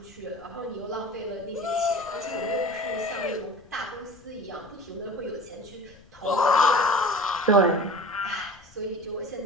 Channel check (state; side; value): noise; left; rumble, 26 dB below the sound